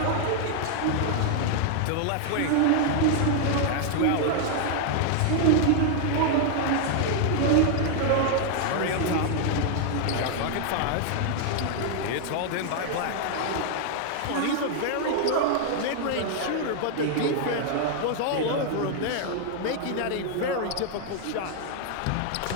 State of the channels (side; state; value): both; different; correlation 0.00